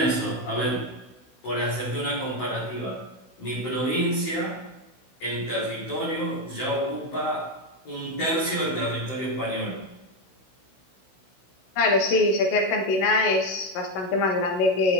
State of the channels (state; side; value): late; right; 16 ms